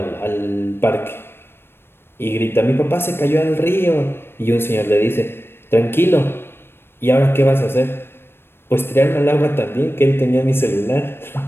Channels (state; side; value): late; right; 0.11 ms